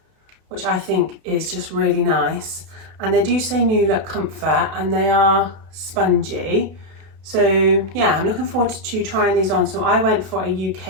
which I think is just really nice. And they do say New Look Comfort and they are spongy. So yeah, I'm looking forward to trying these on. So I went for a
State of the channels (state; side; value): late; left; 32 ms